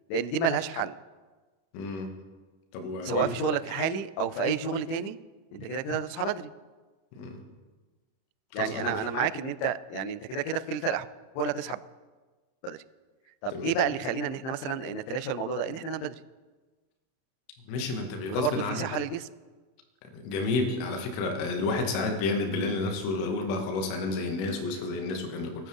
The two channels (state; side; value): late; right; 31 ms